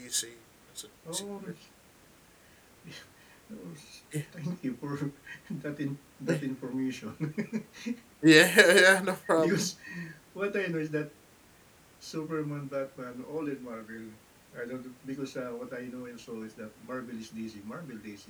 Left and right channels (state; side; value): identical; both; correlation 1.00